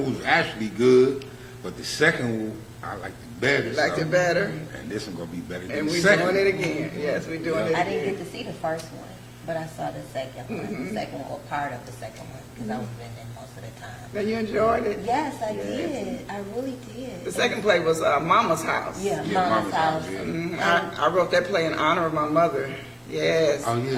was actually good, but the second one I liked it better. You liked it better? And this one gonna be better than And the we're second. doing it again. Yes, we're doing it I again. didn't get to see the first one, but I saw the second one. The second one, or part of the second one, because I was in it most of the time. Now you enjoyed it? Yes, I Yes. did. I really did. The second play was Mama's House. Yeah, Yeah, Mama's House. yeah. I wrote that play in honor of my mother. Yes. Oh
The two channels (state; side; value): identical; both; correlation 1.00